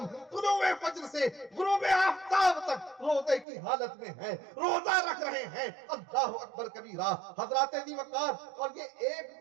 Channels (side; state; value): left; drops out; at 3.5 s